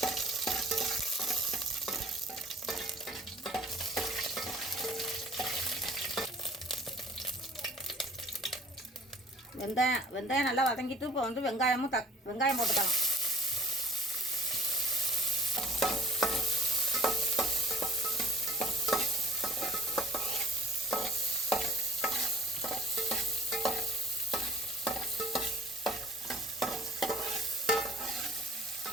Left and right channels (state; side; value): normal; both; correlation 0.51